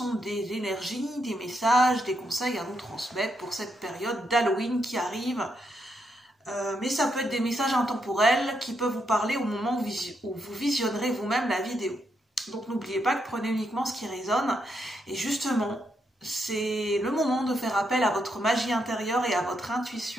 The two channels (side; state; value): both; normal; correlation 0.80